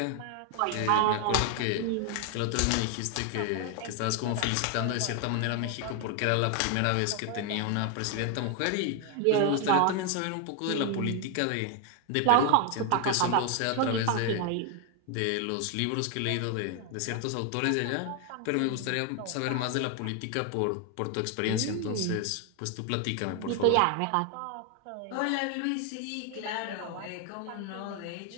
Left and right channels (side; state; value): both; different; correlation 0.01